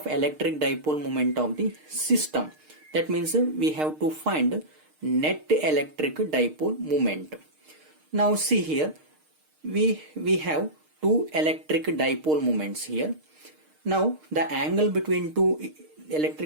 electric dipole moment of the system. That means we have to find net electric dipole moment. Now see here, we have two electric dipole moments here. Now the angle between two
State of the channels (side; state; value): left; late; 6.5 ms